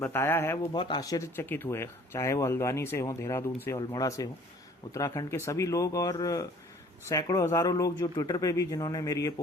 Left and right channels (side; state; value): both; normal; correlation 0.53